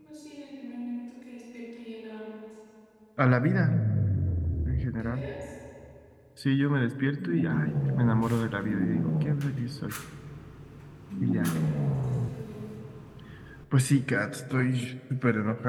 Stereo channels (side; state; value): both; identical; correlation 1.00